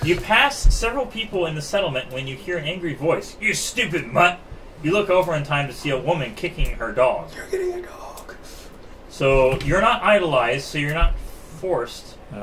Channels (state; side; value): identical; both; correlation 1.00